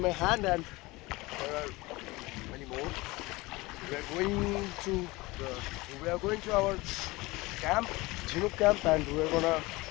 my hand and there are many more. We are going to our camp, Chinook camp, and we are gonna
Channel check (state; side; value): quieter; right; 21.9 dB